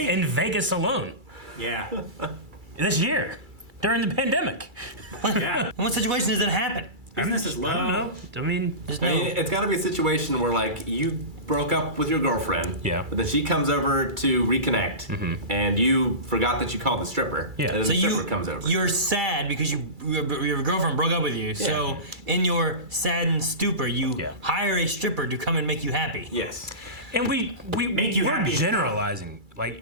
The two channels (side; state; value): left; late; 2.3 ms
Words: in Vegas alone Yeah. this year during the pandemic. Yeah. In what situation does that happen? Business is I don't low. know. I mean, There's I no. mean, it's got to be a situation where like you broke up with your girlfriend, Yeah. but then she comes over to reconnect, and you forgot that you called the stripper. Yeah. And then So the stripper comes over. you're sad because your girlfriend broke up with you. So in your saddened stupor, you Yeah. hire a stripper to come and make you happy. Yes. and we Make you we're happy. generalizing.